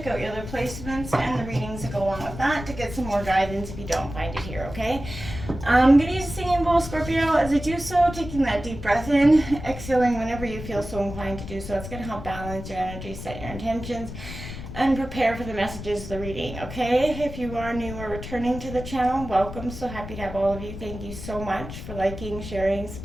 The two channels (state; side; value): noise; left; rumble, 10 dB below the sound